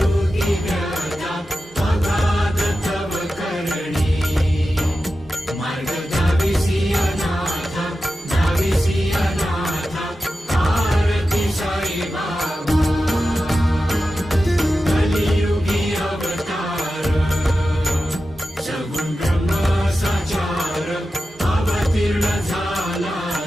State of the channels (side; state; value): both; normal; correlation 0.92